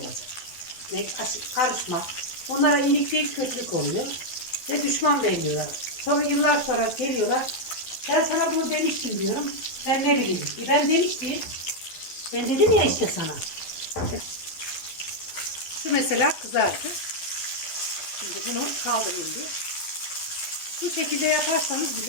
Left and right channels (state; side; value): late; right; 12 ms